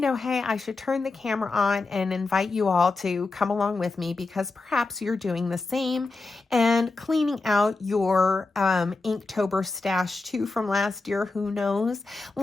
I should turn the camera on and invite you all to come along with me because perhaps you're doing the same and cleaning out your Inktober stash too from last year. Who knows?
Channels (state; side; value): quieter; right; 3.6 dB